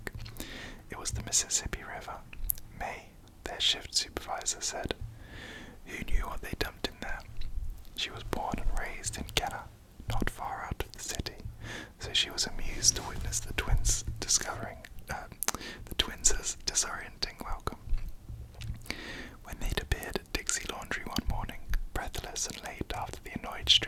It was the Mississippi River. May, their shift supervisor, said. Who knew what they dumped in there? She was born and raised in Kenner, not far out of the city, so she was amused to witness the twins disorienting welcome. When they'd appeared at Dixie Laundry one morning, breathless and late after the annoyed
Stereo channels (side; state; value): both; identical; correlation 1.00